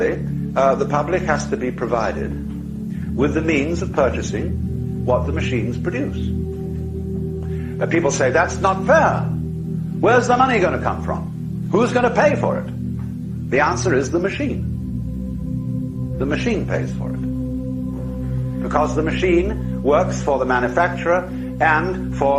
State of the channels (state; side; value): identical; both; correlation 1.00